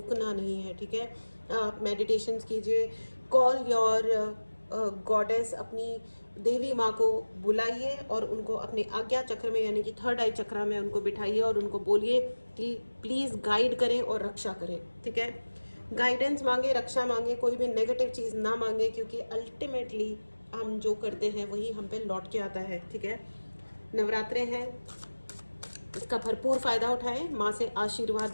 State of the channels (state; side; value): inverted; both; correlation -1.00